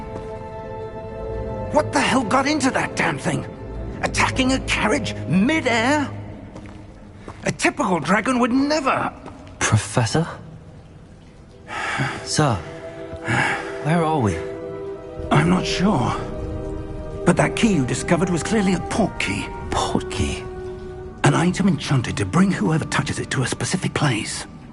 What the hell got into that damn thing? Attacking a carriage mid-air? A typical dragon would never... Professor? Sir, where are we? I'm not sure. But that key you discovered was clearly a port key. Port key? An item enchanted to bring whoever touches it to a specific place.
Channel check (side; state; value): both; identical; correlation 1.00